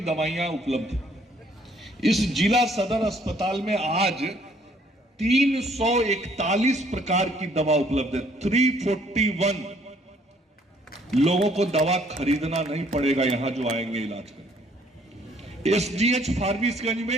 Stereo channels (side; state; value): both; normal; correlation 0.63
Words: दवाइयां उपलब्ध हैं। इस जिला सदर अस्पताल में आज 341 प्रकार की दवा उपलब्ध है। 341 लोगों को दवा खरीदना नहीं पड़ेगा यहां जो आएंगे इलाज करने। एसडीएच फारबिसगंज